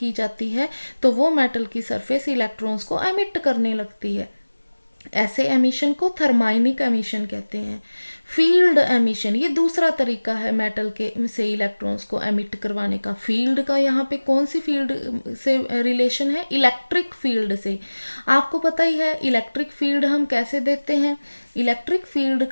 जाती है, तो वो मेटल की सरफेस इलेक्ट्रॉन्स को एमिट करने लगती है। ऐसे एमिशन को थर्माइनिक एमिशन कहते हैं। फील्ड एमिशन, ये दूसरा तरीका है मेटल के से इलेक्ट्रॉन्स को एमिट करवाने का। फील्ड का यहाँ पे कौन सी फील्ड से रिलेशन है? इलेक्ट्रिक फील्ड से। आपको पता ही है इलेक्ट्रिक फील्ड हम कैसे देते हैं। इलेक्ट्रिक फील्ड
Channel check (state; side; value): inverted; both; correlation -1.00